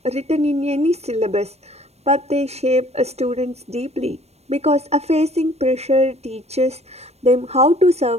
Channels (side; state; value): left; late; 0.31 ms